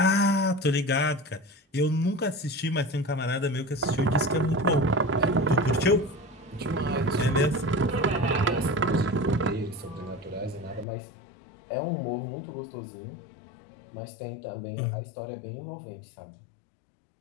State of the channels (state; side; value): drops out; right; at 10.9 s